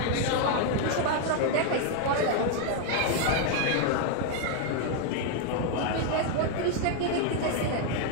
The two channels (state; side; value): different; both; correlation 0.00